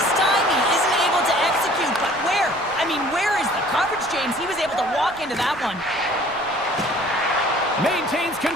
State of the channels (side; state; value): right; noise; rumble, 22 dB below the sound